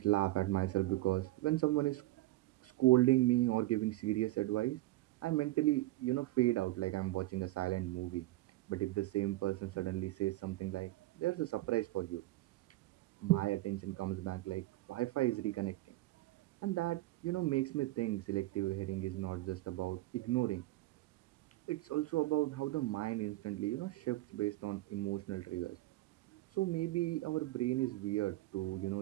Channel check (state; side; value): quieter; left; 17.8 dB